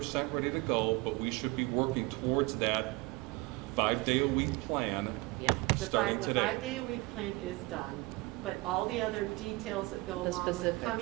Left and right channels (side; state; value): left; quieter; 22.8 dB